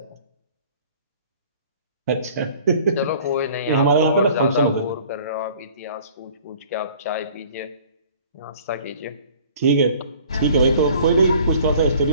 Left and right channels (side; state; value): both; inverted; correlation -0.51